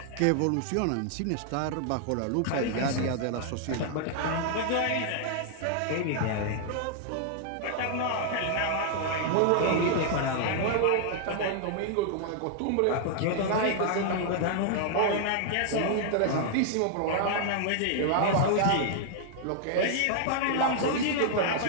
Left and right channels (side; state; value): both; different; correlation -0.01